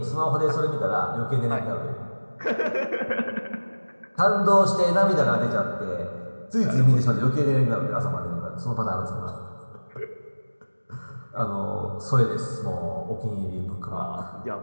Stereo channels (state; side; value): inverted; both; correlation -1.00